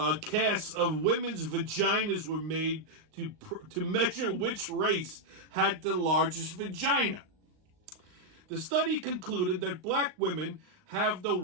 casts of women's vaginas were made to measure which race had the largest vagina. The study concluded that black women have the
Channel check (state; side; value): late; left; 38 ms